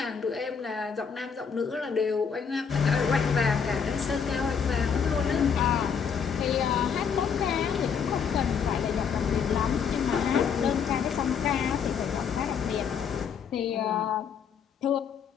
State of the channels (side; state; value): right; quieter; 6.7 dB